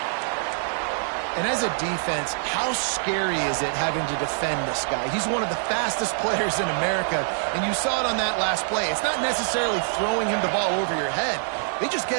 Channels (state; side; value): silent; left; digital silence